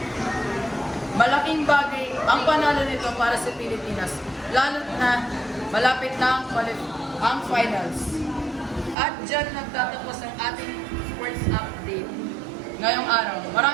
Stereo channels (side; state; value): left; drops out; at 9.0 s